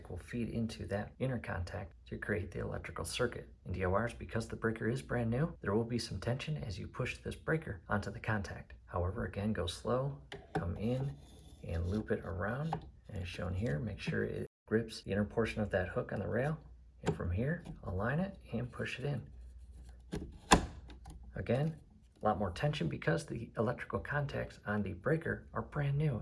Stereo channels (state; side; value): identical; both; correlation 1.00